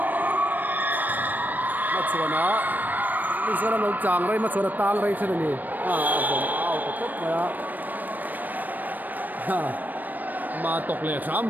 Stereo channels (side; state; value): left; late; 0.086 ms